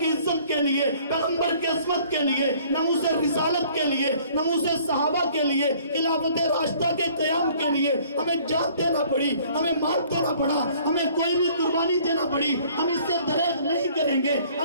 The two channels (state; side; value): inverted; both; correlation -0.56